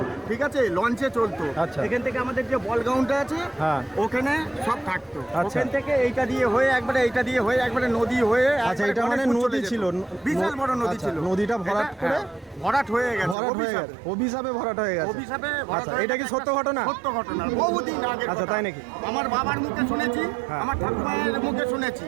ঠিক আছে, লঞ্চে চলতো। আচ্ছা। এখান থেকে আমাদের যে বল গ্রাউন্ডটা আছে, হ্যাঁ। ওখানে সব থাকতো। আচ্ছা। ওখান থেকে এইটা দিয়ে হয়ে একবারে এইটা দিয়ে হয়ে একবারে নদী হয়ে আচ্ছা, একবারে এটা মানে গণেশপুর নদী চলে যেত। ছিল? বিশাল বড় নদী আচ্ছা, ছিল। নদীটা ভরাট এটা, করে? ভরাট হয়ে গেছে, ভরাট হয়ে অভিশাপে। গেছে, অভিশাপে ভরাট হয়ে গেছে। অভিশাপে ভরাট আচ্ছা, হয়ে এটা কি গেছে। সত্য ঘটনা? সত্য ঘটনা, বহুদিন আগে। আচ্ছা, তাই নাকি? আমার বাবার মুখে শুনেছি, হ্যাঁ। আমার ঠাকুমায়ের মুখে শুনেছি।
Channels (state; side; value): drops out; left; at 13.4 s